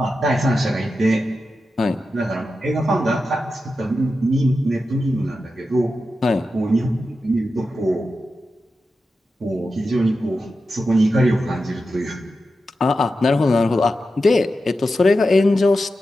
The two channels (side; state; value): both; normal; correlation 0.91